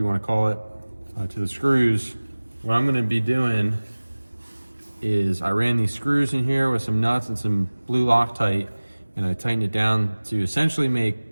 wanna call it, to the screws, what I'm gonna be doing is I ran these screws in here with some nuts and some blue Loctite, and I tightened it down to essentially make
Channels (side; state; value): both; inverted; correlation -1.00